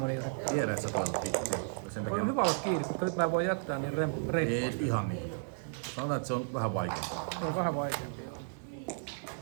Tiedät sä toivot hittiä. Sen takia On hyvä olla kiinni, koska nyt mä en voi jättää niin reippaasti. ei ihan niin. Sanotaan, että se on vähän vaikeampaa. Se on vähän vaikeampi.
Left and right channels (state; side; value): silent; left; digital silence